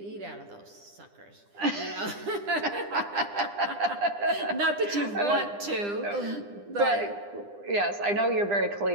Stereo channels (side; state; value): left; late; 9.9 ms